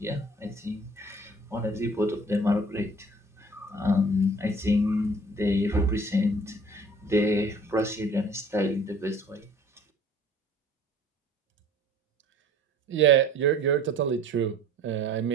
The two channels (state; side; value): normal; both; correlation 0.50